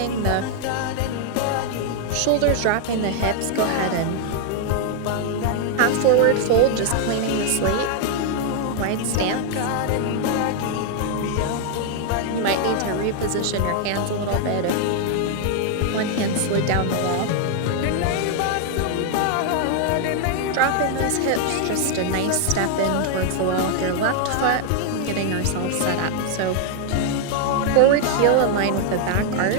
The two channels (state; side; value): different; both; correlation 0.00